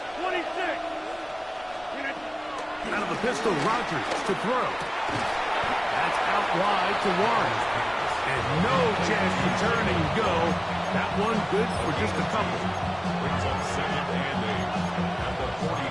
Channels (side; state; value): left; noise; rumble, 25 dB below the sound